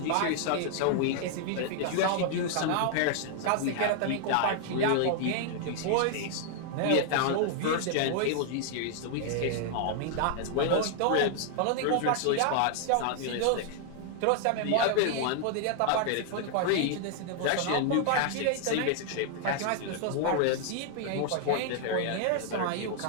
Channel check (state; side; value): different; both; correlation 0.00